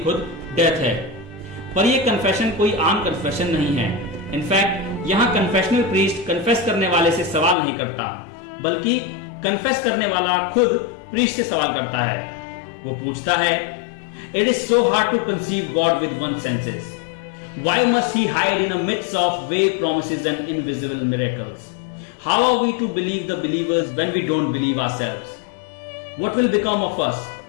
खुद डेथ है। पर यह कन्फेशन कोई आम कन्फेशन नहीं है। इनफैक्ट यहां कन्फेशनल प्रीस्ट कन्फेस करने वाले से सवाल नहीं करता, बल्कि कन्फेस करने वाला खुद प्रीस्ट से सवाल करता है। वो पूछता है, it is so hard to conceive God with one senses, why must he hide in a midst of vague promises and invisible miracles? How are we to believe the believers when we don't believe ourselves? What will become of us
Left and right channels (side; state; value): right; drops out; at 7.6 s